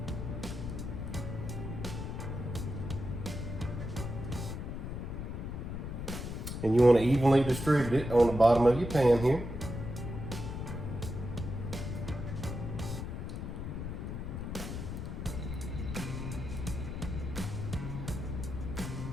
And you want to evenly distribute it on the bottom of your pan here.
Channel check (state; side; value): noise; left; rumble, 5 dB below the sound